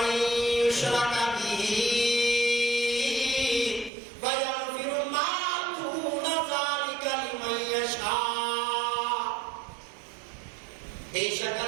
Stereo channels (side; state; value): left; drops out; at 3.9 s